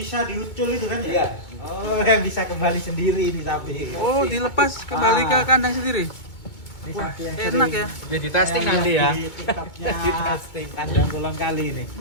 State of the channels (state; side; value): late; right; 2.2 ms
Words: diucul itu kan ya? Iya. Oh, yang bisa kembali sendiri ini sapi. Oh dilepas kembali ke kandang sendiri. Ini Wah, sapi yang enak sering ya. Jadi testing nanti ya. Di TikToknya testing kandang ulang kali ini.